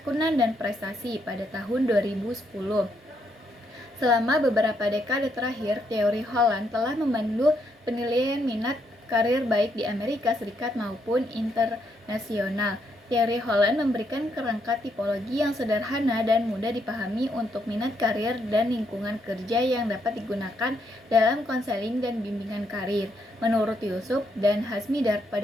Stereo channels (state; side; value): normal; both; correlation 0.76